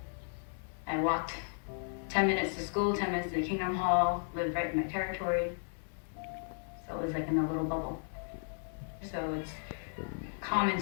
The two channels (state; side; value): silent; right; 55 dB below the other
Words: I walked 10 minutes to school, 10 minutes to the Kingdom Hall, lived right in my territory. So it was like in a little bubble. So it's common